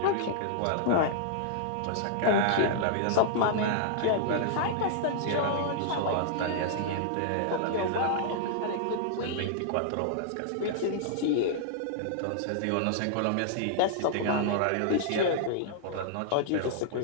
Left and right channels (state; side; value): different; both; correlation -0.01